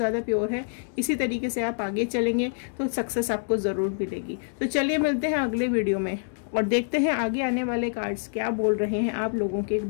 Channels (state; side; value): silent; right; digital silence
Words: प्योर है, इसी तरीके से आप आगे चलेंगे तो सक्सेस आपको ज़रूर मिलेगी। तो चलिए मिलते हैं अगले वीडियो में और देखते हैं आगे आने वाले कार्ड्स क्या बोल रहे हैं आप लोगों के